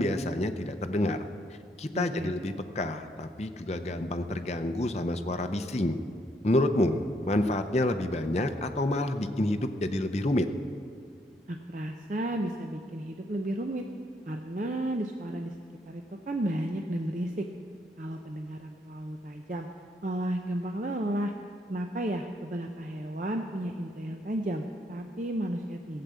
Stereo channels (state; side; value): normal; both; correlation 0.72